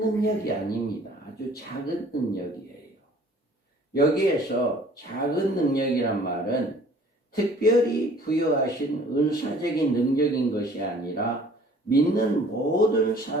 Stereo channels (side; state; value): both; normal; correlation 0.53